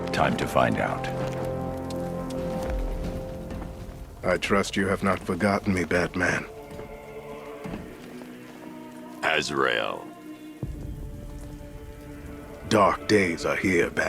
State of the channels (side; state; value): both; identical; correlation 1.00